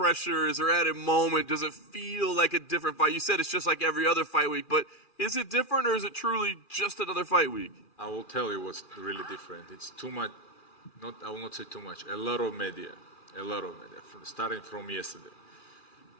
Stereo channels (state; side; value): late; right; 2.4 ms